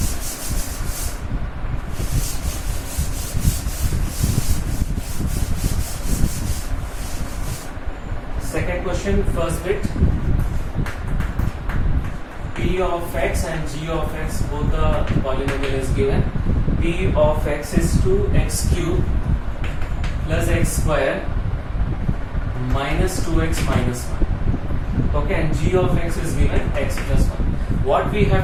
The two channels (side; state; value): both; identical; correlation 1.00